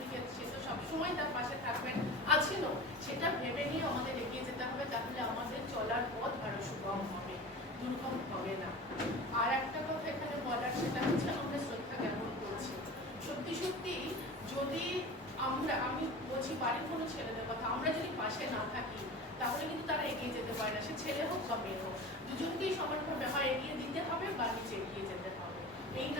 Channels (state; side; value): normal; both; correlation 0.34